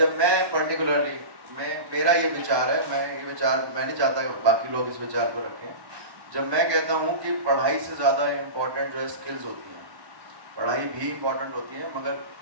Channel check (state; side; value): late; left; 1.2 ms